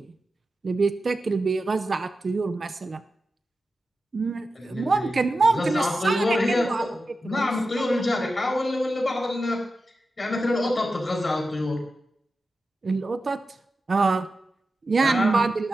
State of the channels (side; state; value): both; normal; correlation 0.91